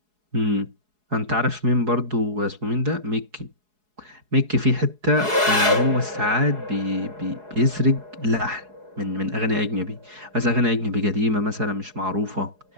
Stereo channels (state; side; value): late; left; 4.7 ms